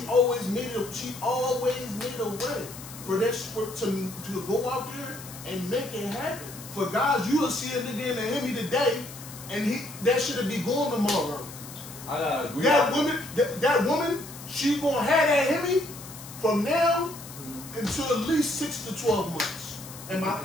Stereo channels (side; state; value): left; noise; hiss, 14 dB below the sound